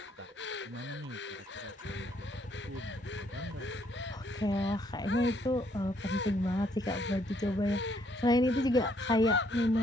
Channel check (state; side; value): normal; both; correlation 0.69